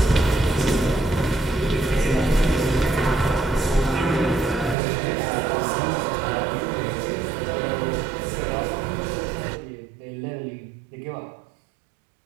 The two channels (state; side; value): drops out; left; at 4.8 s